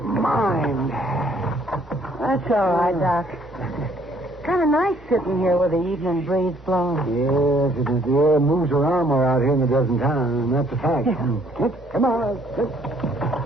mind. That's all right, Doc. Kind of nice sitting here with the evening breeze blowing. Yes, it is. The air moves around more out here than it does in town, and that's a fact. Come on.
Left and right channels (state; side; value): normal; both; correlation 0.63